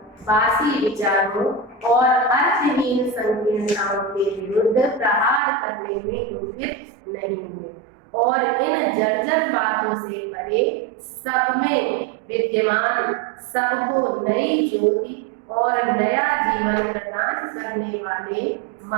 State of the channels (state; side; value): drops out; left; at 5.4 s